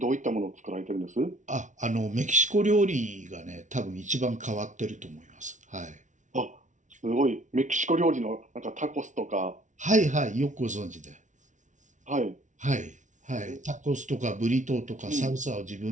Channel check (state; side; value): late; left; 0.36 ms